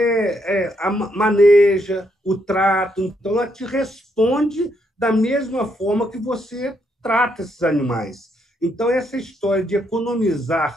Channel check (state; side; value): normal; both; correlation 0.76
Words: maneja, o trato. Então, ela te responde da mesma forma que você trata esses animais. Então, essa história de